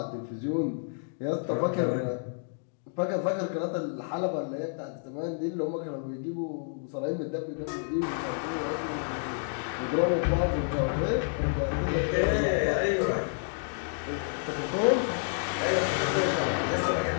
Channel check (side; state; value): right; silent; digital silence